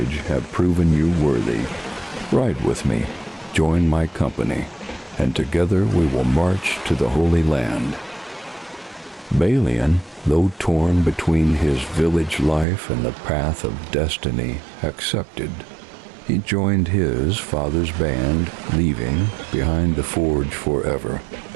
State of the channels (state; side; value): drops out; left; at 12.7 s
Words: have proven you worthy. Ride with me. Join my company, and together we will march to the Holy Land." Balian, though torn between his village life and the path of destiny, accepted. He joined his father's band, leaving behind the forge forever.